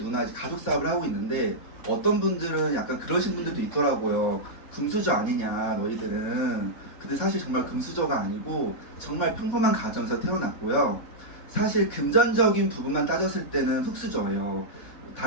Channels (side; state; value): right; late; 3.8 ms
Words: 가족 사업을 하고 있는데 어떤 분들은 약간 그러신 분들도 있더라고요. 금수저 아니냐 너희들은. 근데 사실 정말 금수저가 아니고 정말 평범한 가정에서 태어났고요. 사실 금전적인 부분만 따졌을 때는 흙수저예요.